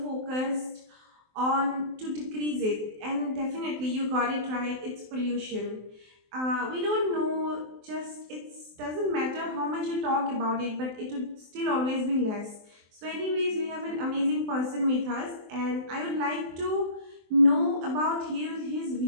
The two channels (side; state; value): left; late; 23 ms